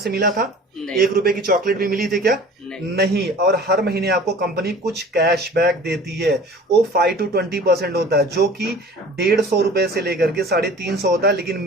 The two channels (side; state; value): both; normal; correlation 0.44